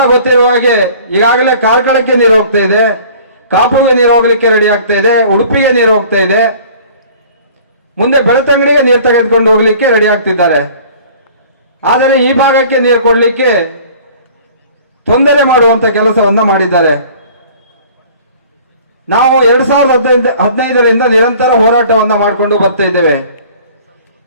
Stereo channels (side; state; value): both; inverted; correlation -0.49